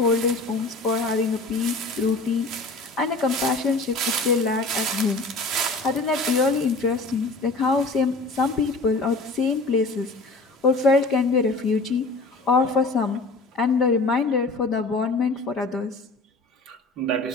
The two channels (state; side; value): quieter; right; 3.2 dB